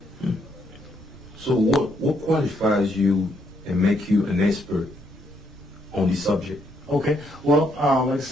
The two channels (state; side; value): noise; right; rumble, 22 dB below the sound